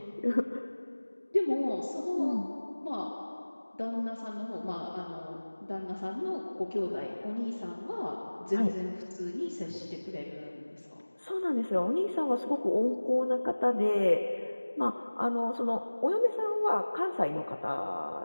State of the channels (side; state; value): both; inverted; correlation -1.00